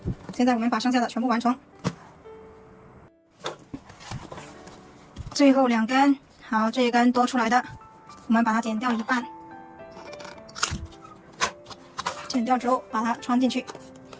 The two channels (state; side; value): identical; both; correlation 1.00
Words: 现在我们把剩下的全部完成，最后2根，好，这一根多出来的，我们把它剪掉一半，剪掉之后把它穿进去。